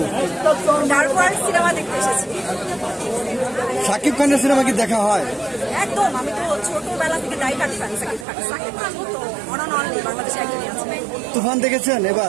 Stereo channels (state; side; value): drops out; left; at 8.2 s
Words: ডার্ক ওয়ার্ল্ড সিনেমা দেখতে এসেছি। শাকিব খানের সিনেমা কি দেখা হয়? একদম, আমি তো ছোটবেলা থেকে die hard fan Shakib Khan. Shakib Khan তো অন অ্যান্ড অনলি বাংলাদেশে একজনই আছে। তুফান দেখেছেন?